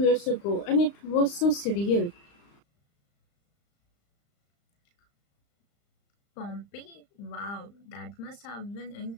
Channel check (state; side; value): late; right; 35 ms